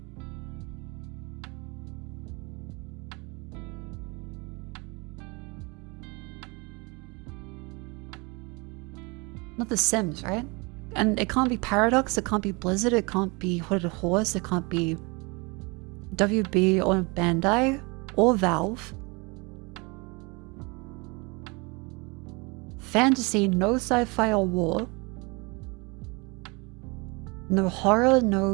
Not The Sims, right? And it can't be Paradox, it can't be Blizzard, it can't be Hooded Horse, it can't be WB or Bandai or Valve. Fantasy, no sci-fi or war. No horror,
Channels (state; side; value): quieter; left; 28.4 dB